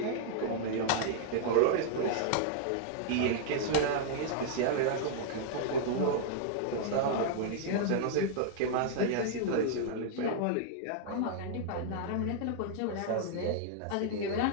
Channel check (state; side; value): different; both; correlation -0.01